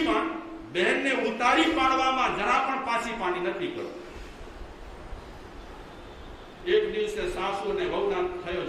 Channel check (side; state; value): both; identical; correlation 1.00